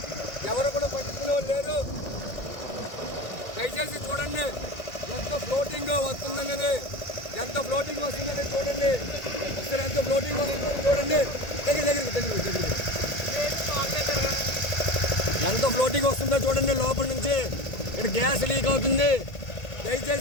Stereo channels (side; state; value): right; late; 1.8 ms